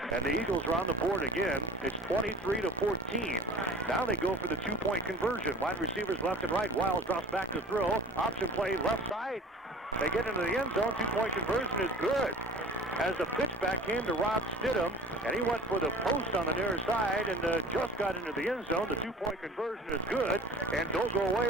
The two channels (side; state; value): both; normal; correlation 0.37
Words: And the Eagles are on the board again. It's 23-14. Now they go for the 2-point conversion. Wide receivers left and right. Wiles drops back to throw. Option play left side. They get into the end zone. 2-point conversion is good. As the pitchback came to Rob Stidham, and he went for the post on the near side and just got into the end zone. The 2-point conversion is good. And don't go away,